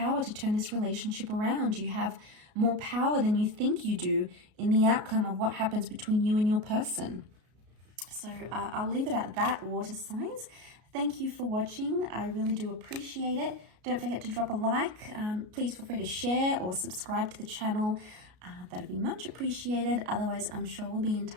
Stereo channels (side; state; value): left; late; 33 ms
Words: to turn this relationship around. You have more power than you think you do in the outcome of what happens between you and your person. So I'll leave it at that, water signs. Thank you for watching. I really do appreciate it. Don't forget to drop a like. Please feel free to share or subscribe to the channel. That'd be much appreciated. Otherwise, I'm sure we'll be in